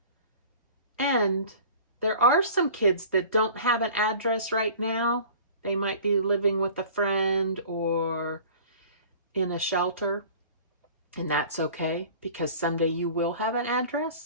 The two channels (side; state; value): both; inverted; correlation -0.45